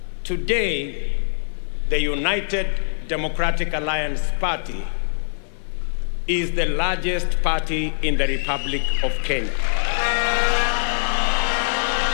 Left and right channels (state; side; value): silent; right; 55 dB below the other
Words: Today, the United Democratic Alliance Party is the largest party in the Republic of Kenya.